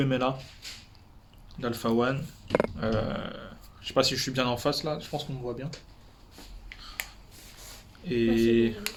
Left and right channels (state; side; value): identical; both; correlation 1.00